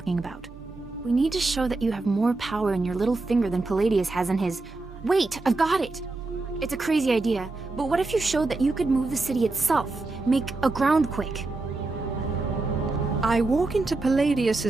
about. We need to show that you have more power in your little finger than Palladius has in his... Wait, I've got it! It's a crazy idea, but what if you showed that you could move the city itself? Make a groundquake? I walk into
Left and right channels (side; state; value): left; quieter; 3.3 dB